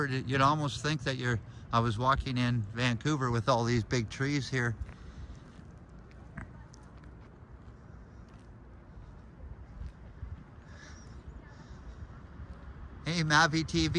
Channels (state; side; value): identical; both; correlation 1.00